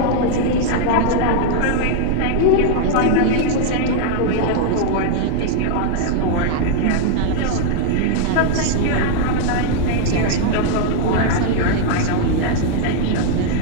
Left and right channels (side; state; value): both; different; correlation -0.01